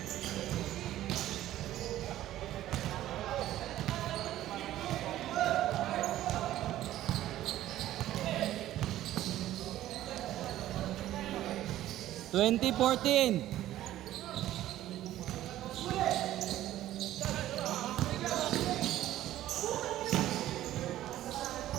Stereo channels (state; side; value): quieter; left; 13.7 dB